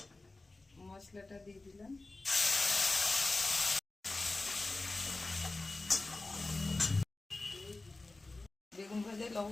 মশলাটা দিয়ে দিলাম। বেগুন ভাজায়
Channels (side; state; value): right; quieter; 3.2 dB